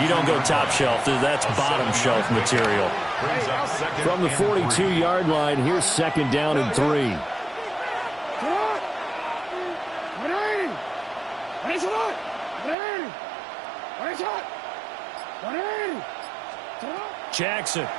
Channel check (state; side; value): drops out; left; at 12.8 s